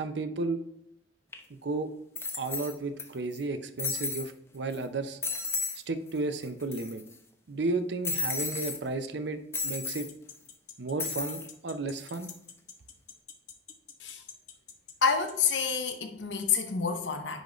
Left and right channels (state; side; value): normal; both; correlation 0.10